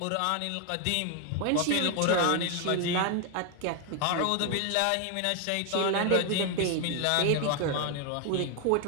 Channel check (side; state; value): both; different; correlation 0.01